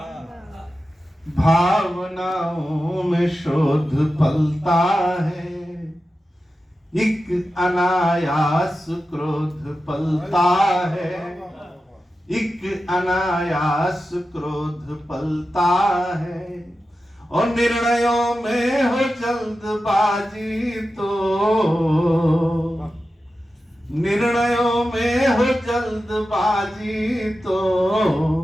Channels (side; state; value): both; normal; correlation 0.92